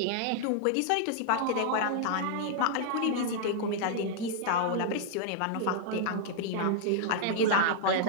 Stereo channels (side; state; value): both; different; correlation -0.01